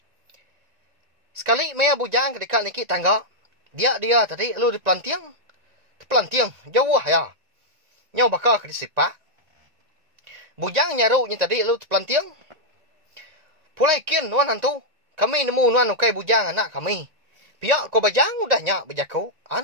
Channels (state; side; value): late; left; 1.9 ms